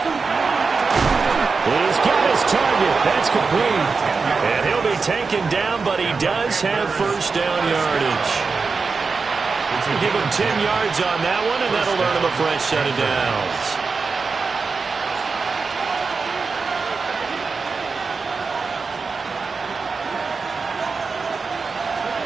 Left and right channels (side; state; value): left; quieter; 4.6 dB